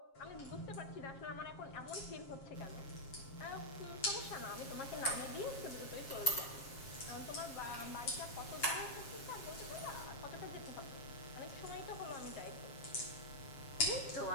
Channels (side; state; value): right; late; 7.4 ms